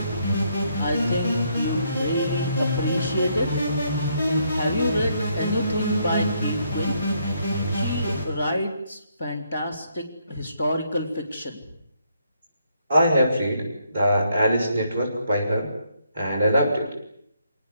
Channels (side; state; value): both; inverted; correlation -0.73